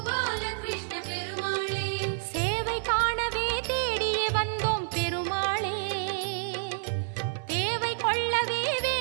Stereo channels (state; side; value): silent; left; 59 dB below the other